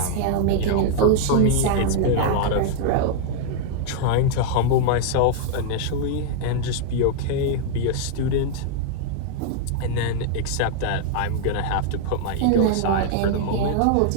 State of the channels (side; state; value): both; different; correlation 0.00